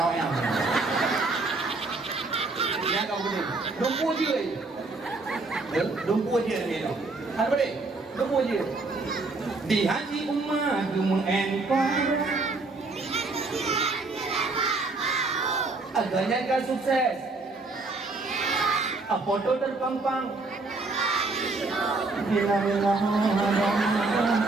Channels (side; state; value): left; quieter; 3.5 dB